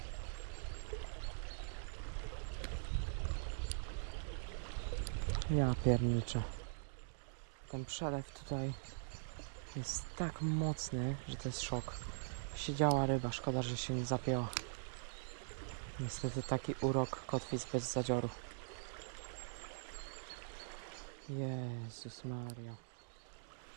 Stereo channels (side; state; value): left; silent; digital silence